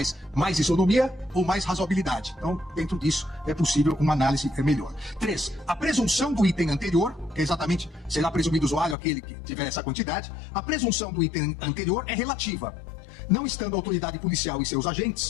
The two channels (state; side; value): drops out; right; at 9.0 s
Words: Mais isonomia ou mais razoabilidade. Então, dentro disso, é possível uma análise melhor. 3. A presunção do item anterior, que é exatamente será presumido usuário aquele que tiver essa quantidade, a presunção do item anterior é relativa, não estando a autoridade policial e seus